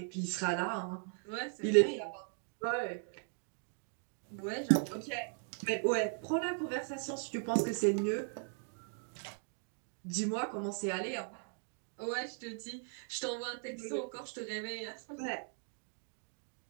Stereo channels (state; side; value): silent; left; 52 dB below the other